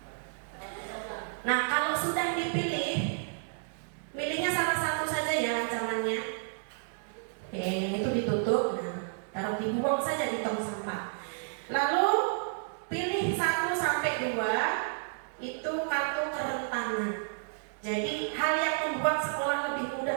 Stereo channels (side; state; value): left; silent; digital silence